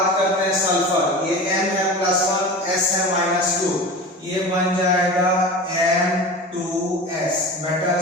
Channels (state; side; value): normal; both; correlation 0.32